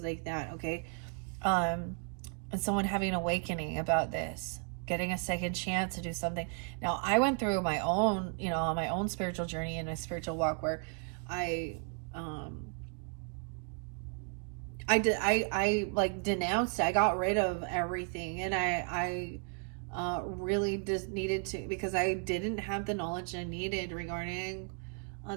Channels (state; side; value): quieter; left; 39.6 dB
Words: like that, okay? And someone having an awakening about this, getting a second chance to do something. Now, I went through my own, on my own spiritual journey and a spiritual walk where I denounced, I got rid of everything, and I really just needed to, because I didn't have the knowledge I needed regarding